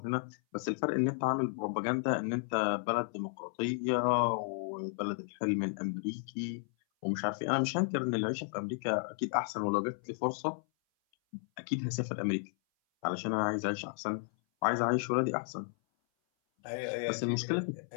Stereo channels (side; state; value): right; silent; 55 dB below the other